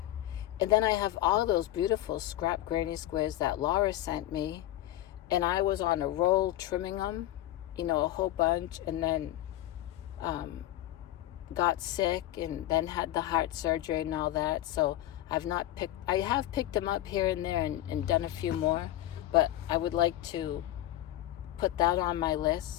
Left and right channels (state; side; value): quieter; right; 14.0 dB